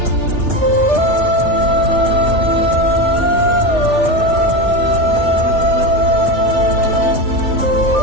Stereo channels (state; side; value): late; left; 3.3 ms